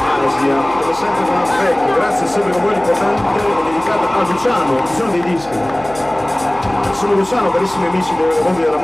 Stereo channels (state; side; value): noise; right; hum, 20 dB below the sound